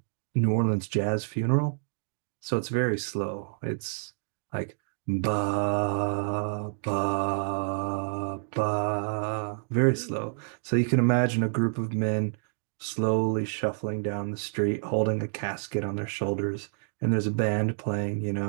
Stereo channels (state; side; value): silent; left; digital silence